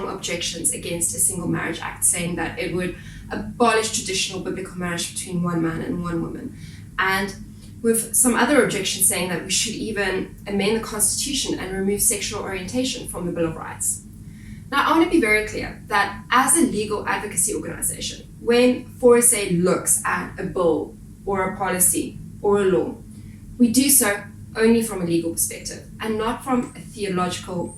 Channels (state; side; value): identical; both; correlation 1.00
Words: objections against a Single Marriage Act, saying that it would abolish traditional biblical marriage between one man and one woman, and with some other objections saying that we should even amend the Constitution and remove sexual orientation from the Bill of Rights. Now, I want to be very clear that as a legal advocacy organization, when 4SA looks at a bill or a policy or a law, we do so only from a legal perspective and not from a theological,